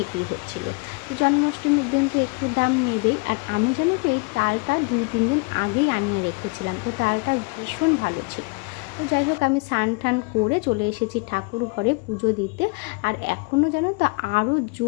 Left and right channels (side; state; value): right; quieter; 29.1 dB